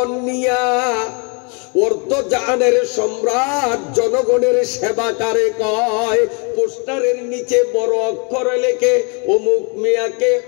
নিয়া অর্ধজাহানের সম্রাট জনগণের সেবাকারে কয়, পোস্টারের নিচে বড় অক্ষরে লেখে অমুক মিয়াকে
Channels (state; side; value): quieter; right; 34.9 dB